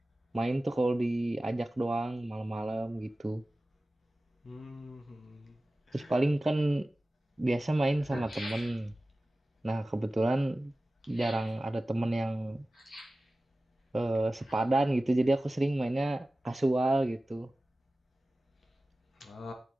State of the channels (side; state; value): both; normal; correlation 0.97